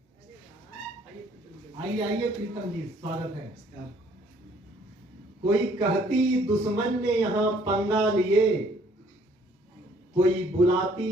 आइए आइए प्रीतम जी, स्वागत है। कोई कहती दुश्मन ने यहाँ पंगा लिए, कोई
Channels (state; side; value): normal; both; correlation 0.61